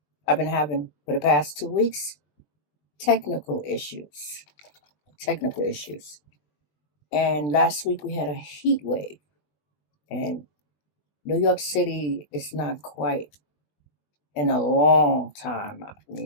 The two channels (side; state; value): right; late; 20 ms